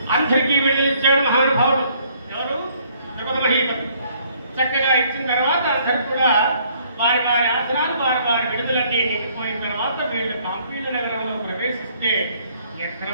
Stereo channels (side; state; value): both; inverted; correlation -0.64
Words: అందరికీ వెళ్ళిచ్చాడు మహానుభావుడు. ఎవరు? జగన్మహీపతి. చక్కగా ఇచ్చిన తర్వాత అందరు కూడా వారి వారి ఆసనాలు వారి వారి విడుదలన్నీ నిండిపోయిన తర్వాత వీళ్ళు కాంపీయ నగరంలో ప్రవేశిస్తే ఎక్కడ